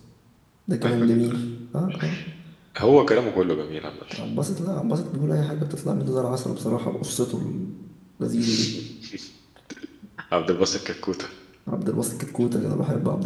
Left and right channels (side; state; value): both; identical; correlation 1.00